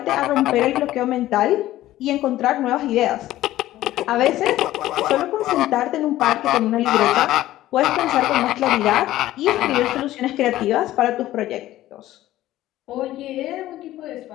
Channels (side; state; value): right; quieter; 14.8 dB